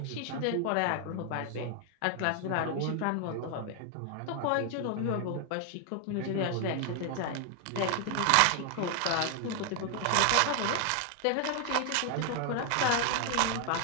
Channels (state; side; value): different; both; correlation 0.00